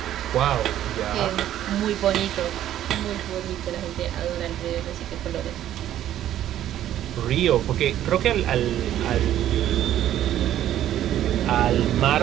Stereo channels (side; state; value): left; quieter; 12.0 dB